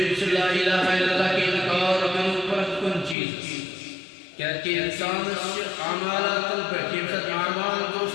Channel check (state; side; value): drops out; right; at 3.2 s